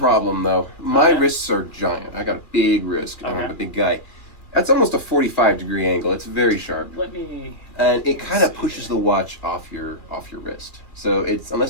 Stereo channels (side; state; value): right; late; 2.3 ms